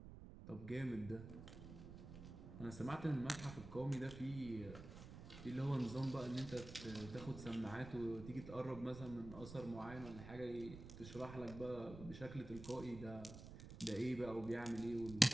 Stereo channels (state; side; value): noise; right; rumble, 12 dB below the sound